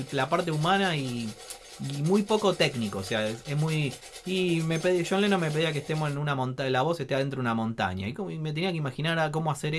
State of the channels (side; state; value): both; identical; correlation 1.00